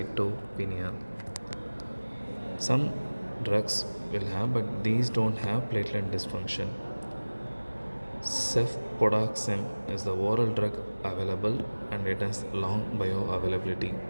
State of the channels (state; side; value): inverted; both; correlation -1.00